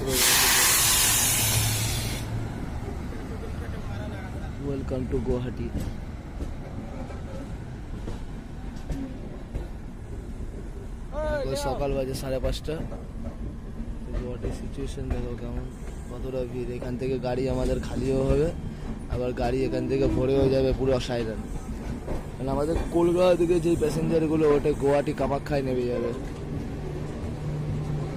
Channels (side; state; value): both; identical; correlation 1.00